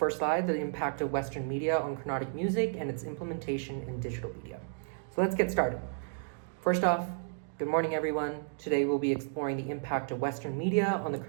slide, the impact of Western media on Carnatic music and its implementation in digital media. So let's get started. First off, good morning everyone. Today we'll be exploring the impact of Western media on the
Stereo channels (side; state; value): left; silent; digital silence